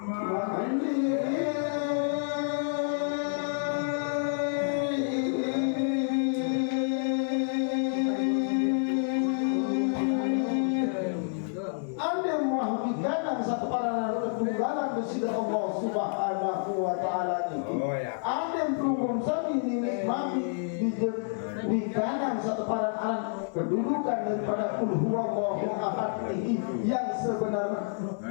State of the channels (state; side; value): silent; right; 59 dB below the other